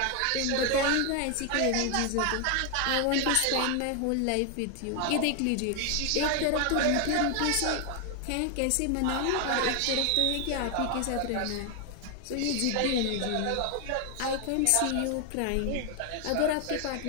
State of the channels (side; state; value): both; different; correlation 0.01